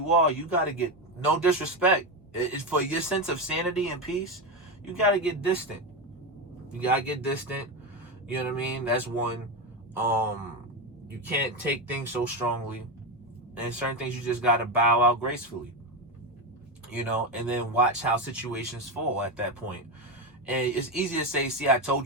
are, you got to get, no disrespect. It's for your sense of sanity and peace. You got to get distant. You got to get distant. You know what I mean? That's one. You can't take things so strongly. And certain things you just got to bow out gracefully. And then watch how situations fall at that point. And it's easy to say, see, I told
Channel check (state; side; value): normal; both; correlation 0.14